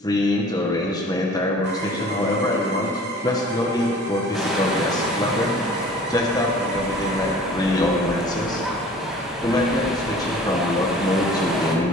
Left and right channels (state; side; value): normal; both; correlation 0.47